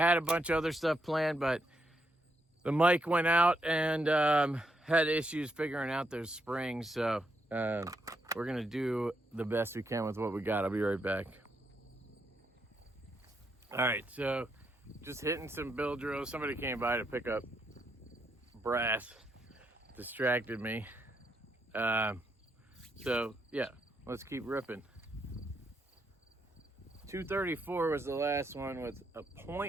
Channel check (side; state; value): both; normal; correlation 0.79